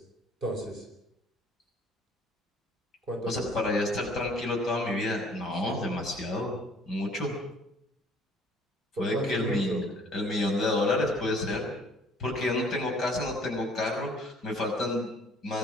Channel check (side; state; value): both; normal; correlation 0.56